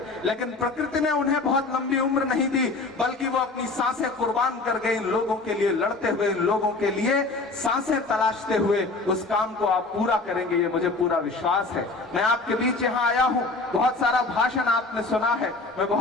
लेकिन प्रकृति ने उन्हें बहुत लंबी उम्र नहीं दी, बल्कि वो अपनी सांसें कुर्बान कर गए इन लोगों के लिए, लड़ते हुए इन लोगों के लिए सांसें तलाशते हुए, उस काम को आप पूरा करेंगे, ये मुझे पूरा विश्वास है। मैं आपके बीच यहाँ आया हूँ, बहुत सारा भाषण आपने सुना है, मैं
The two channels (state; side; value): quieter; right; 3.5 dB